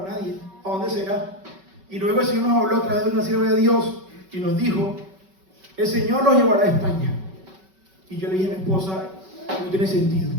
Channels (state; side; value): late; left; 5.3 ms